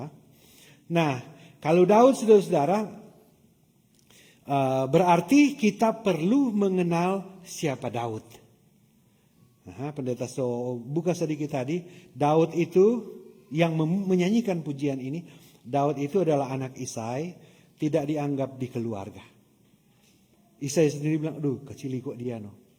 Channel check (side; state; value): both; identical; correlation 1.00